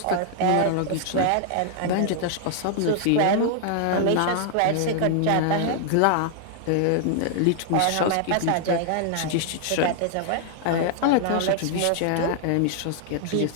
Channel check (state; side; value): different; both; correlation 0.00